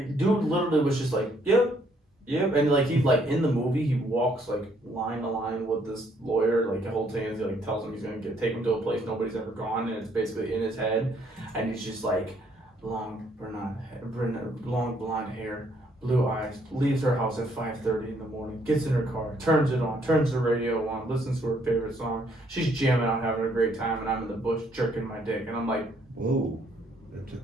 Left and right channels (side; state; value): both; normal; correlation 0.68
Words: Dude literally was just like, yep. And like he like in the movie he walks like line to line with this lawyer like the whole thing. He like tells him he's gonna take him to a place nobody's ever gone, and it's basically in his head. And he's just like long blonde hair, blue eyes, leaves her house at 5:30 in the morning, gets in her car, turns it on, turns the radio on, listens to her favorite song. She's jamming out, having a great time, and I'm in the bush jerking my dick, and I'm like, whoa, that